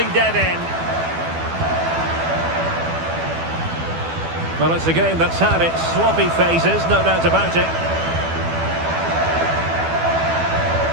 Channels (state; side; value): late; left; 12 ms